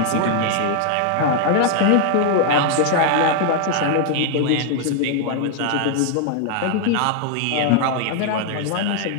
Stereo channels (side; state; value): both; different; correlation 0.00